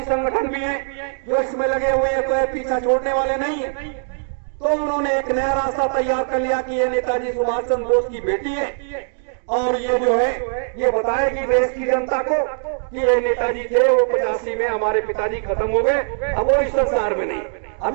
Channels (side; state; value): left; silent; digital silence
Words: संगठन भी हैं जो इसमें लगे हुए हैं, कोई पीछा छोड़ने वाले नहीं है, तो उन्होंने एक नया रास्ता तैयार कर लिया कि ये नेताजी सुभाष चंद्र बोस की बेटी है और ये जो है ये बताएगी देश की जनता को कि ये नेताजी थे, वो 85 में हमारे पिताजी खत्म हो गए, अब वो इस संसार में नहीं।